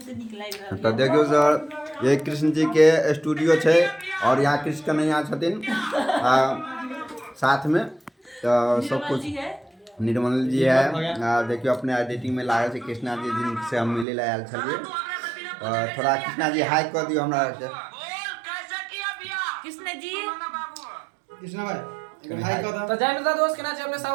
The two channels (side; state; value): left; drops out; at 14.1 s